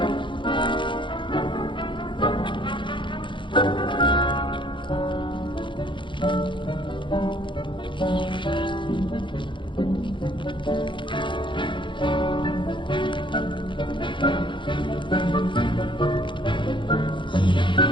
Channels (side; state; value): right; late; 0.23 ms